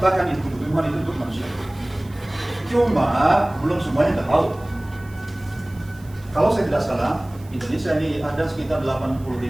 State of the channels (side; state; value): right; noise; hiss, 26 dB below the sound